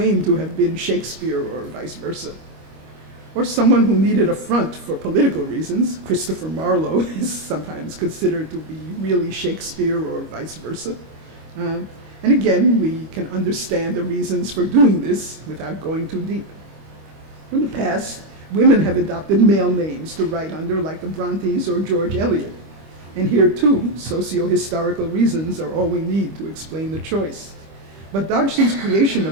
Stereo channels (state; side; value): late; left; 25 ms